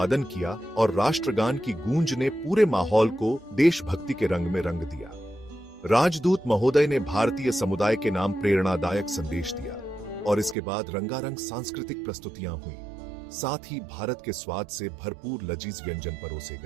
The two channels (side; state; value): left; drops out; at 10.6 s